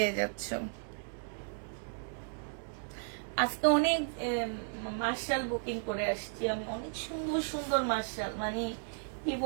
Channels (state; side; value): silent; left; digital silence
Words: যাচ্ছ। আজকে অনেক মার্শাল বুকিং করে আসছি আমি, অনেক সুন্দর সুন্দর মার্শাল, মানে কি